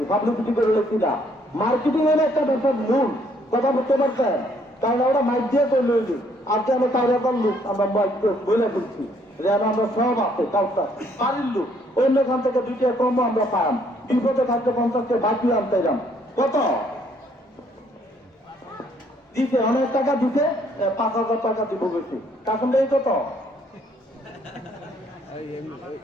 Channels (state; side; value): normal; both; correlation 0.66